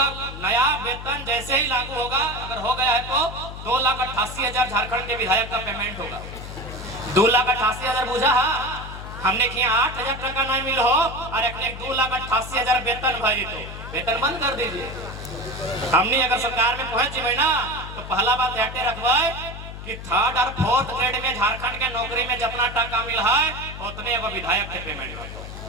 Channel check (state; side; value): noise; left; hum, 10 dB below the sound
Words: नया वेतन जैसे ही लागू होगा, अगर हो गया है तो 2,88,000 झारखंड के विधायक का पेमेंट होगा। 2,88,000 बुझा हमने किया 8,000 टका नहीं मिल हो और एक 2,88,000 वेतन भाई, तो वेतन बंद कर दीजिए। हमने अगर सरकार में पहुंच जाए ना तो पहला बात हटे रखवाए कि 3rd और 4th ग्रेड में झारखंड के नौकरी में जितना टका मिल है उतने एगो विधायक के पेमेंट हो।